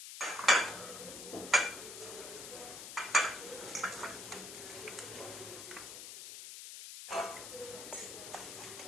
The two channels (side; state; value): left; noise; hiss, 10 dB below the sound